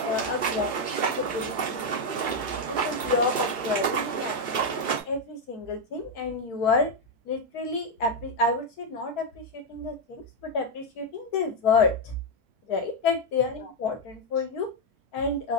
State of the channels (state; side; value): late; left; 2.3 ms